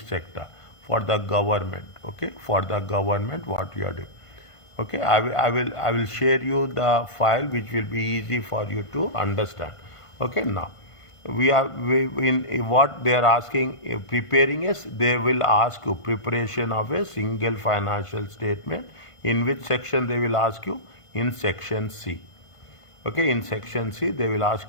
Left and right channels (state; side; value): late; right; 1.5 ms